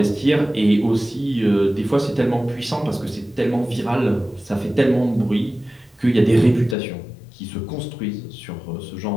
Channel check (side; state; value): right; drops out; at 6.8 s